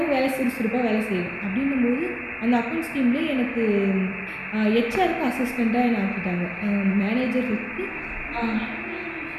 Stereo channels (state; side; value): identical; both; correlation 1.00